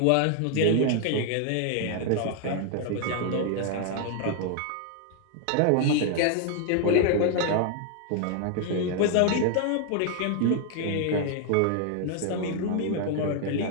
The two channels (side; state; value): both; different; correlation 0.00